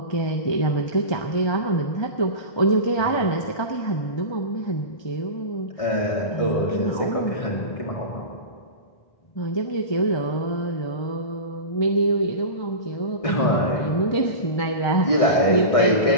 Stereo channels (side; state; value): right; late; 1.2 ms